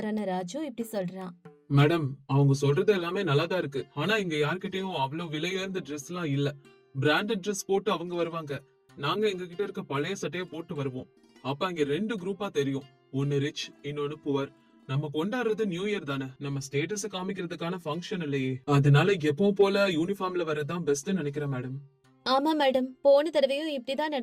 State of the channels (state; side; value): identical; both; correlation 1.00